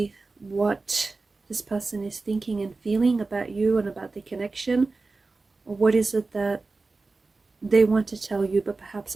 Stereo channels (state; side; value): quieter; left; 3.7 dB